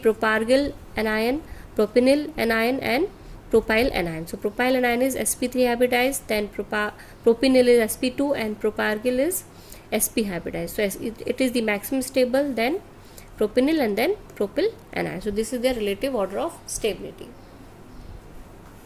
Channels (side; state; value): both; identical; correlation 1.00